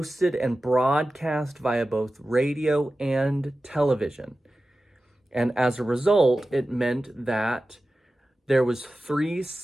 and broadcast via both radio and television. And as a result, it meant that there was three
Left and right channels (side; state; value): both; normal; correlation 0.94